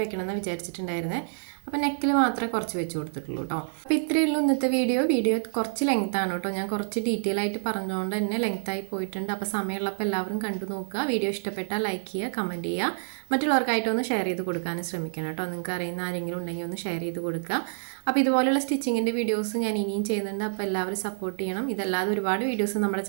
വെക്കണമെന്ന് വിചാരിച്ചിട്ടുണ്ടായിരുന്നേ. അപ്പോൾ നെക്കിൽ മാത്രമേ കുറച്ച് വെച്ച് കൊടുത്തിട്ടുള്ളൂ കേട്ടോ. അപ്പോൾ ഇത്രയേ ഉള്ളൂ ഇന്നത്തെ വീഡിയോ കുറച്ച് ലെങ്ത്താണ് കേട്ടോ. ഞാൻ കുറച്ച് ഡീറ്റെയിൽ ആയിട്ട് പറഞ്ഞുകൊണ്ട് തന്നെ ലെങ്ത്തായി പോയിട്ടുണ്ട്. അപ്പോൾ സമയമുള്ളപ്പോൾ എല്ലാവരും കണ്ടു നോക്കുക. വീഡിയോ ഇഷ്ടപ്പെട്ടാൽ ലൈക്ക് ചെയ്യുക, കമൻറ്റ് ചെയ്യുക. മറ്റുള്ളവർക്കായിട്ടൊന്ന് ഷെയർ ചെയ്ത് കൊടുക്കാനും ശ്രമിക്കണം കേട്ടോ. നിങ്ങൾക്ക് അറിയുന്ന ആരെങ്കിലും ഉണ്ടെങ്കിൽ ഒന്ന് ഷെയർ ചെയ്ത് കൊടുക്കുക. അപ്പോൾ ഇതുപോലെയുള്ള സ്റ്റിച്ചിങ്ങിൻ്റെ വീഡിയോസ് ഞാൻ ഇനിയും ചെയ്യുന്നുണ്ട്. അപ്പോൾ എല്ലാവരും സപ്പോർട്ട് ചെയ്യണം. ഇതല്ലാതെ ഒരുപാട് വീഡിയോസ് നമ്മുടെ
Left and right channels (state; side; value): silent; left; 60 dB below the other